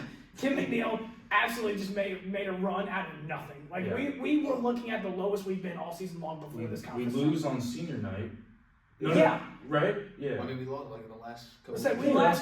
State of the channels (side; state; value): both; identical; correlation 1.00